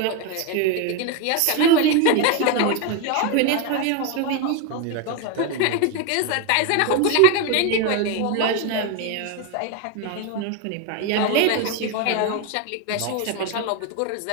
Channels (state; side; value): different; both; correlation 0.02